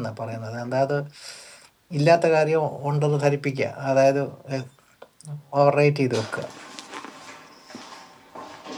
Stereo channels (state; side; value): identical; both; correlation 1.00